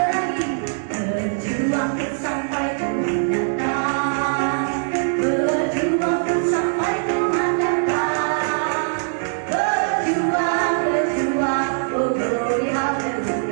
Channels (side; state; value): left; silent; 65 dB below the other